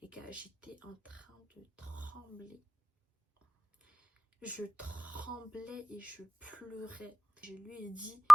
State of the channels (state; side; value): normal; both; correlation 0.98